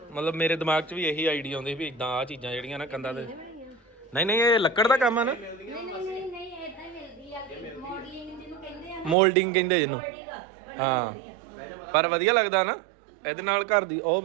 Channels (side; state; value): left; drops out; at 9.2 s